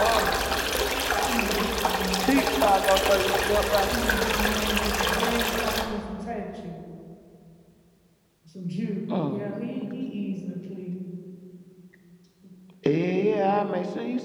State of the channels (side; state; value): both; identical; correlation 1.00